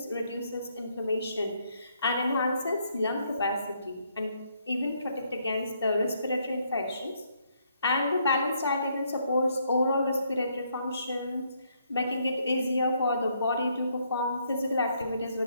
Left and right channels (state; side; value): inverted; both; correlation -0.72